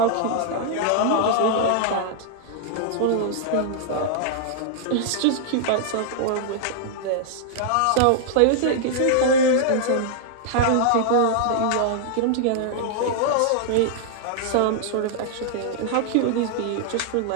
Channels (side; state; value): both; different; correlation -0.01